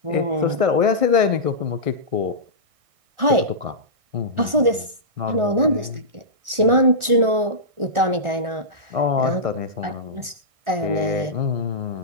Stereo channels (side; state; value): left; late; 1.4 ms